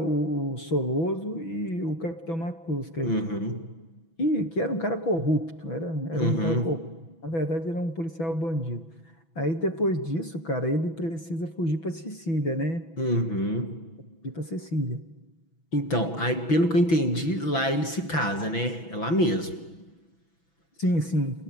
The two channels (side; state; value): right; late; 6.1 ms